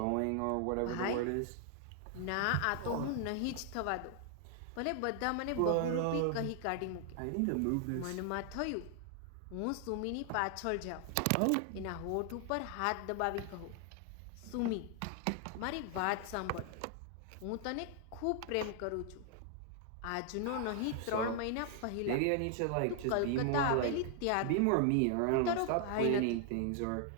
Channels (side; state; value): both; different; correlation 0.00